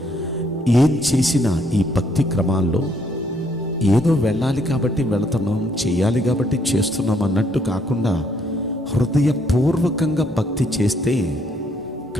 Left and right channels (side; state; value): both; normal; correlation 0.69